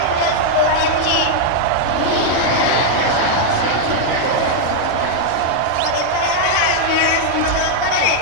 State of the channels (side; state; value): both; different; correlation -0.01